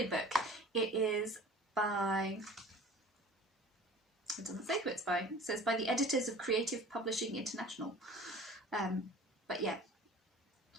book. It is by, it doesn't say who it's by, it says by the editors of Creative Publishing International, but yeah,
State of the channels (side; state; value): both; normal; correlation 0.43